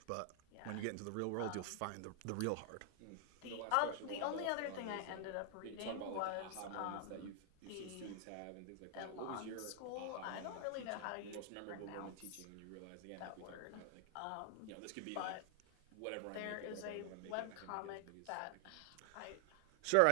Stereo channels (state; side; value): different; both; correlation 0.00